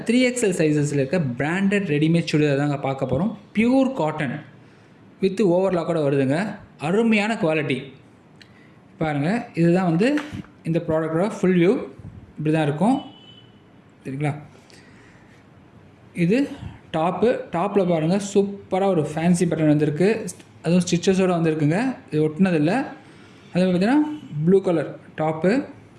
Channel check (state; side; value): identical; both; correlation 1.00